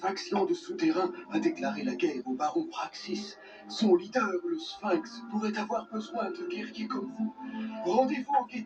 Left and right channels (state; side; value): identical; both; correlation 1.00